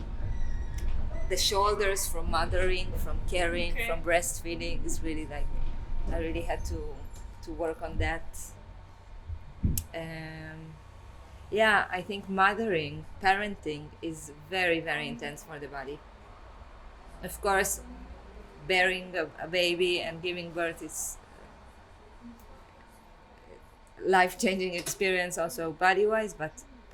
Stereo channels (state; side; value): identical; both; correlation 1.00